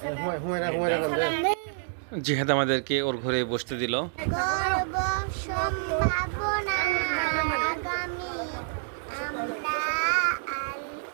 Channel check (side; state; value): left; silent; digital silence